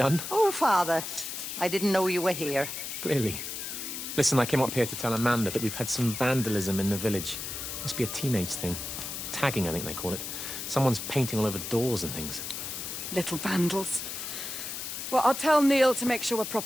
Oh, Father, I didn't know you were here. Clearly. Listen, I came up here to tell Amanda that we've had some vandalism in the village. Must be a teenage thing. Tagging, I think they call it. Someone's painting all over doors and things. Little vandals. Well, I'll tell Neil to make sure we're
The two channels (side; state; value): left; noise; hiss, 6 dB below the sound